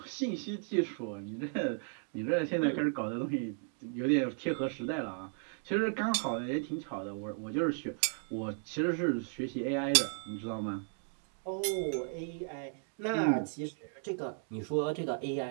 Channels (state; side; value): silent; left; 54 dB below the other